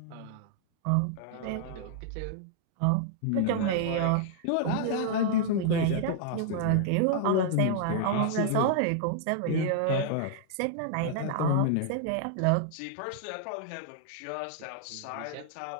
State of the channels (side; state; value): both; different; correlation -0.01